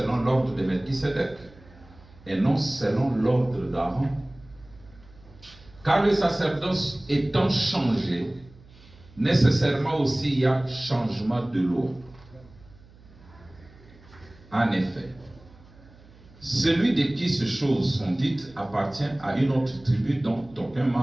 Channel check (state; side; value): noise; right; hum, 24 dB below the sound